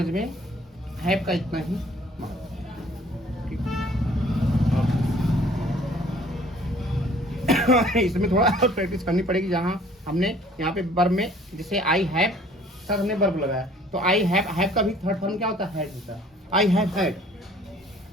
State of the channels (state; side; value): normal; both; correlation 0.55